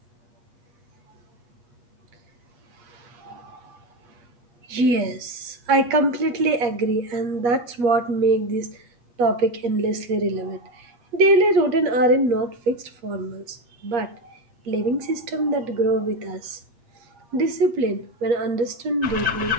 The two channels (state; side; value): late; left; 8.4 ms